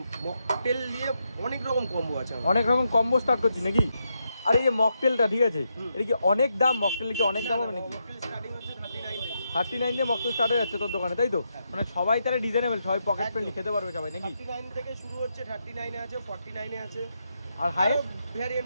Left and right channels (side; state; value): both; inverted; correlation -0.82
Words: মকটেল নিয়ে অনেক রকম কম্বো আছে, অনেক রকম কম্বো স্টার্ট করছি নাকি? আর এই যে মকটেলটা ঠিক আছে, এটা কি অনেক দাম? মকটেল কি অনেক দাম হবে নাকি? মকটেল স্টার্টিং হচ্ছে 39 39 দিয়ে মকটেল স্টার্ট হয়ে যাচ্ছে তোর দোকানে, তাই তো? মানে সবাই তাহলে ডিজাইনেবল, সবাই পকেট ফ্রেন্ডলি খেতে পারবে সবাই নাকি? 39 থেকে শুরু হচ্ছে, 39 এ আছে, 49 এ আছে, আর হাইয়েস্ট